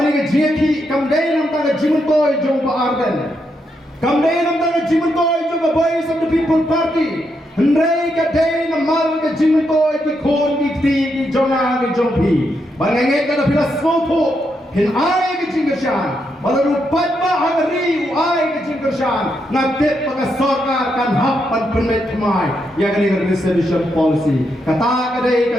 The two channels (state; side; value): normal; both; correlation 0.81